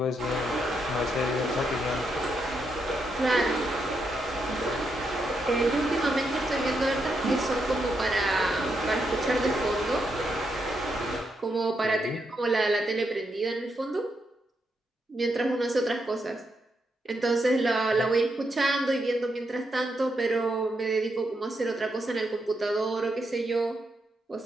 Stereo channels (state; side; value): normal; both; correlation 0.81